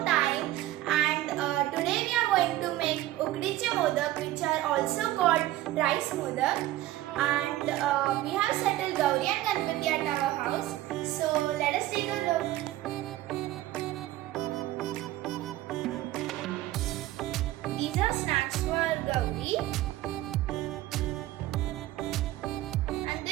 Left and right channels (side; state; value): left; quieter; 15.3 dB